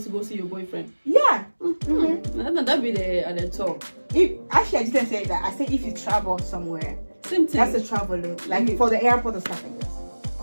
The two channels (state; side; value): inverted; both; correlation -1.00